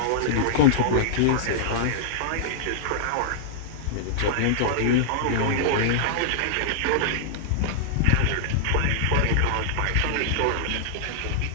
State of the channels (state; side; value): different; both; correlation -0.01